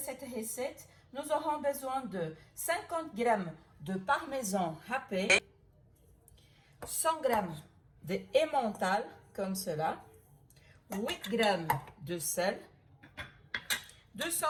recette, nous aurons besoin de 50 g de parmesan râpé, 100 g de emmental comme cela, 8 g de sel,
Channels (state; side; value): identical; both; correlation 1.00